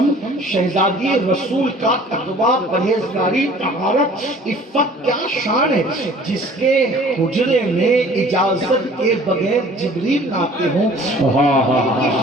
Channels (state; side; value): normal; both; correlation 0.50